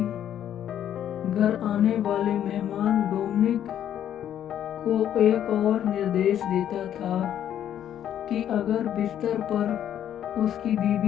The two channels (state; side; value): quieter; right; 10.4 dB